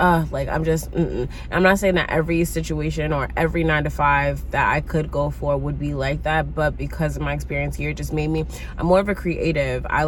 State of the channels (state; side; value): identical; both; correlation 1.00